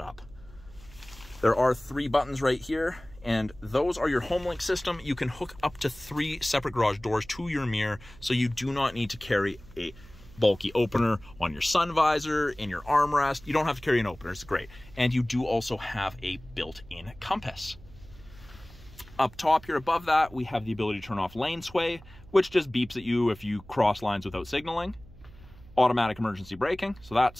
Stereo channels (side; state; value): right; noise; hum, 21 dB below the sound